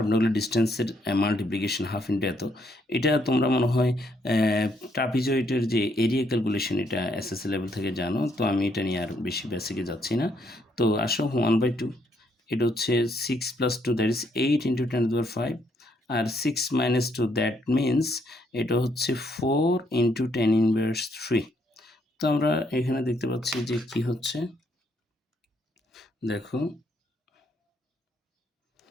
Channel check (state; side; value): normal; both; correlation 0.72